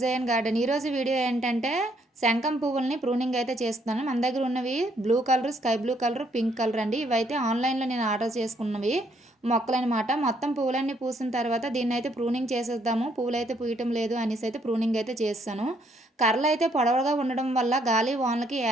garden. ఈరోజు వీడియో ఏంటంటే శంఖం పువ్వుల్ని ప్రూనింగ్ అయితే చేస్తున్నాను. మన దగ్గర ఉన్నవి blue colour, sky blue colour, pink colour అండి. ఇవైతే ఆన్లైన్లో నేను ఆర్డర్ చేసుకున్నవి మొక్కలనమాట. మొత్తం పువ్వులన్నీ పూసిన తర్వాత దీన్ని అయితే ప్రూనింగ్ చేసేద్దాము, పువ్వులు అయితే పూయటం లేదు అనేసి అయితే ప్రూనింగ్ అయితే చేస్తాను. కర్రలు అయితే పొడవుగా ఉండడం వల్ల గాలి వానలకి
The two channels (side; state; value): both; normal; correlation 0.70